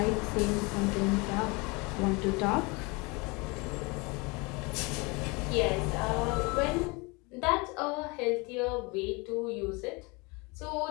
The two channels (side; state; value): right; quieter; 27.5 dB